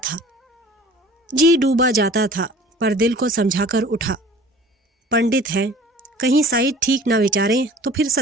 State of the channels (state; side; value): normal; both; correlation 0.47